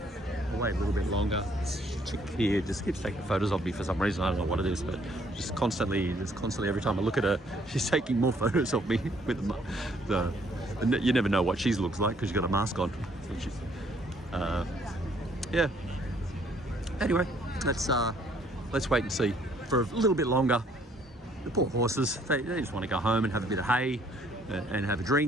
I'll wait a little bit longer. This chick here just keeps taking photos of me for some reason. I don't know what it is, but just constantly every time I look at her, she's taking more photos of me with the you never know what she looks like because she's got a mask on. So she's, yeah. Anyway, let's wait and see for a little bit longer. The poor horses, they just want to go home and have a bit of hay and have a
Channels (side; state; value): both; normal; correlation 0.64